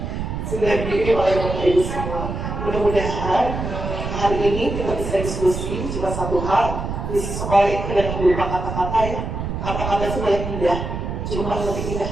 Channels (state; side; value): noise; right; rumble, 4 dB below the sound